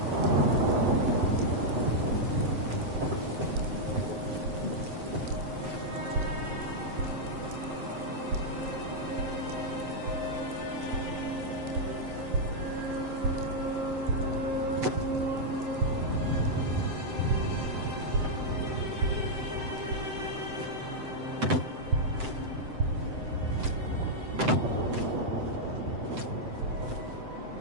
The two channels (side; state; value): left; late; 7.8 ms